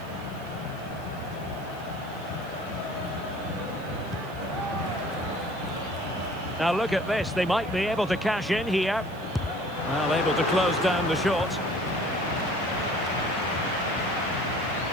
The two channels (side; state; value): right; noise; hiss, 24 dB below the sound